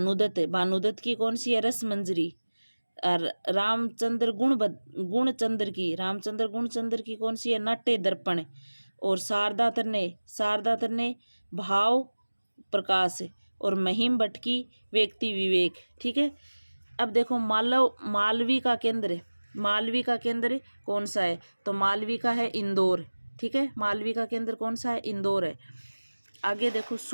है। भानुदत्त की कौन सी है, रस मंजरी। और रामचंद्र गुणचंद्र की, रामचंद्र गुणचंद्र की कौन सी है, नाट्य दर्पण। और शारदा तन्ने भाव प्रकाश। और महिम भट्ट की व्यक्ति विवेक। ठीक है। अब देखो मालवी का केंद्र, मालवी का केंद्र कौन सा है, तो मालवी का है इंदौर। ठीक है। मालवी का केंद्र कौन सा है, इंदौर है। आगे देखो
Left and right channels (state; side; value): inverted; both; correlation -1.00